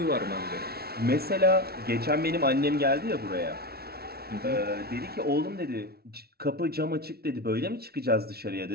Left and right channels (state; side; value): late; left; 0.45 ms